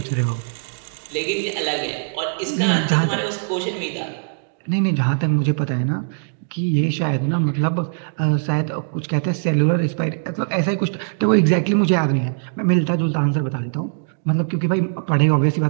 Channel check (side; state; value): left; silent; digital silence